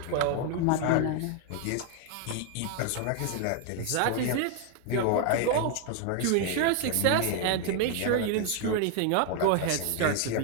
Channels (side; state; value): both; different; correlation 0.01